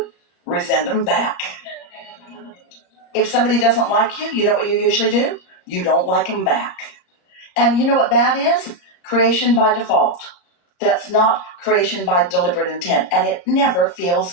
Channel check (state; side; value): late; right; 33 ms